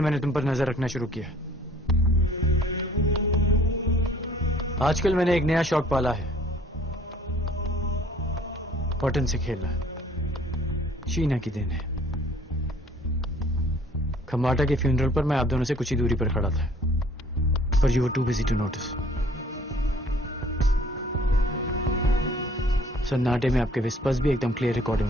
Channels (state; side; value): normal; both; correlation 0.56